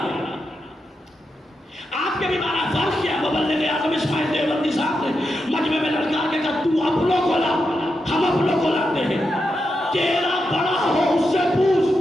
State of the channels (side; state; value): both; normal; correlation 0.86